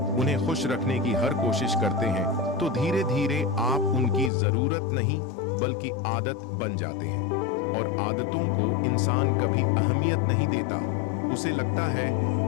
उन्हें खुश रखने की हर कोशिश करते हैं, तो धीरे धीरे आप उनकी जरूरत नहीं बल्कि आदत बन जाते हैं। और आदतों को इंसान कभी अहमियत नहीं देता, उसे लगता है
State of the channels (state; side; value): drops out; right; at 4.3 s